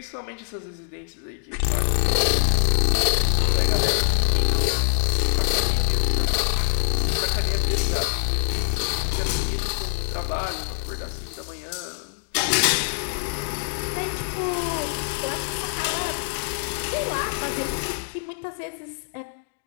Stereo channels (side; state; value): right; silent; digital silence